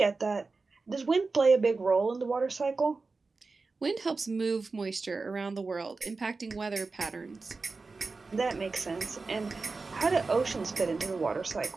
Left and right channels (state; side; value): quieter; left; 4.0 dB